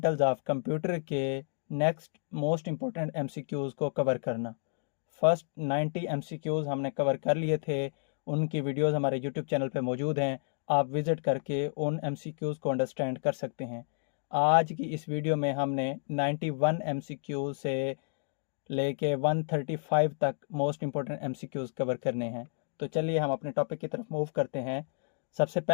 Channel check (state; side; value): silent; right; digital silence